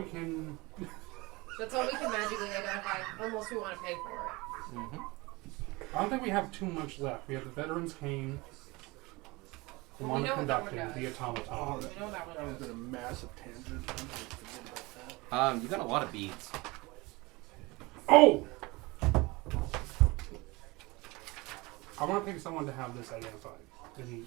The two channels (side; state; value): left; quieter; 23.6 dB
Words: can. That's all we can magically identify, unless we want to pay for it. Mm-hmm. I don't think we have too much left. We have the Veterans Cane, the Well, we know what that one Conducting, does. the Automaton. We know that That one. was been a massive tangent. I'm gonna forget about that. You got a lot of beads. Oh! I want to pick someone to have this identified. And